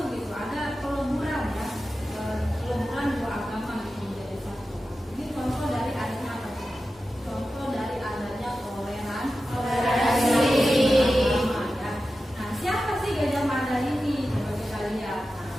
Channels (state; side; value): normal; both; correlation 0.93